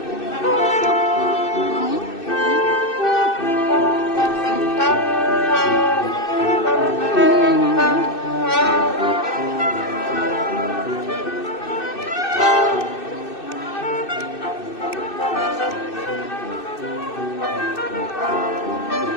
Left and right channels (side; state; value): right; late; 2.6 ms